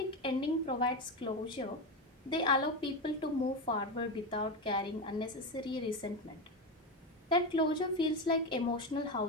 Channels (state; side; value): normal; both; correlation 0.15